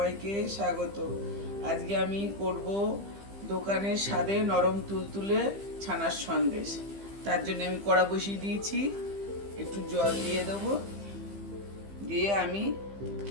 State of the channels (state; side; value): late; left; 15 ms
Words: স্বাগত। আজকে আমি করব দোকানের স্বাদে নরম তুলতুলে ছানার সন্দেশ। তার জন্য আমি কড়া বসিয়ে দিয়েছি, একটু জল দিয়ে দেবো। দিয়ে আমি